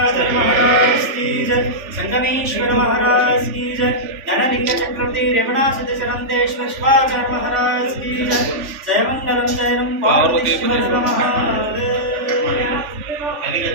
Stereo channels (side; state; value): left; late; 3.4 ms